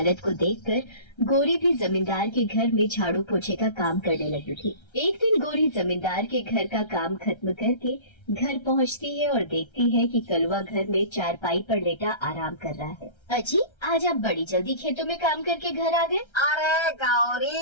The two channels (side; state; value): right; late; 1.3 ms